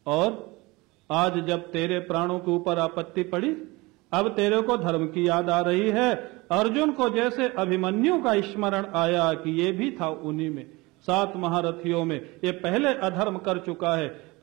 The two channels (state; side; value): quieter; left; 23.1 dB